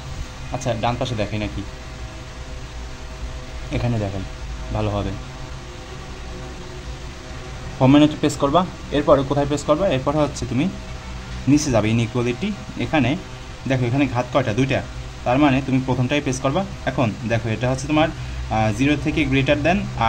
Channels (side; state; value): both; identical; correlation 1.00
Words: আচ্ছা ডান পাশে দেখাই নাকি, এখানে দেখাই ভালো হবে। হোম মেনুতে প্রেস করবা, এরপরে কোথায় প্রেস করবা? এরপরে হচ্ছে তুমি নিচে যাবে, ইনইকুয়ালিটি। এখানে দেখো এখানে ঘাত কয়টা? 2টা। তার মানে তুমি প্রথমটাই প্রেস করবা। এখন দেখো এটা হচ্ছে তোমার 0 থেকে গ্রেটার দেন